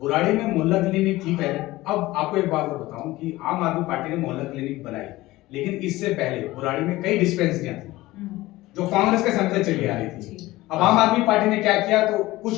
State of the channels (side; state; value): right; quieter; 18.3 dB